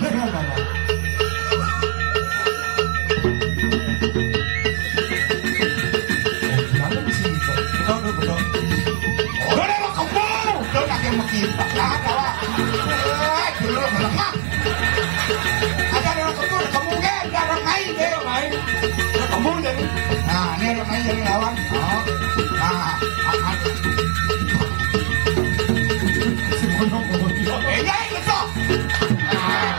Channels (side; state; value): left; silent; digital silence